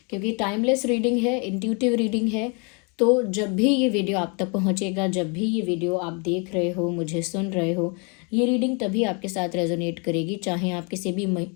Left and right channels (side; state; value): right; quieter; 33.9 dB